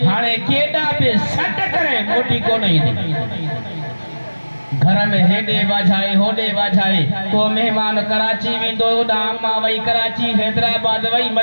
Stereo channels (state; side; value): inverted; both; correlation -1.00